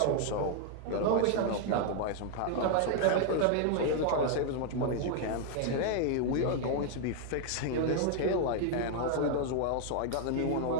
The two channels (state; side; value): different; both; correlation 0.00